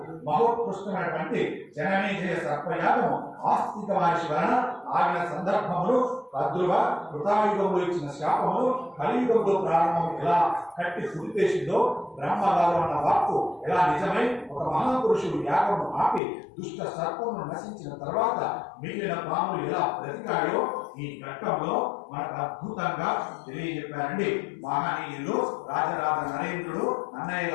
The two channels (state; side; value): drops out; right; at 16.2 s